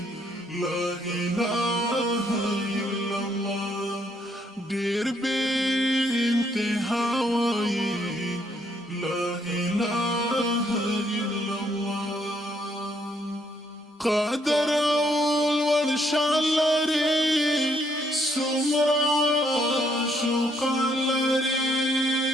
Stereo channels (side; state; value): both; normal; correlation 0.71